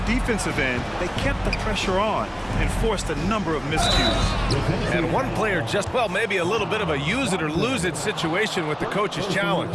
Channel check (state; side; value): identical; both; correlation 1.00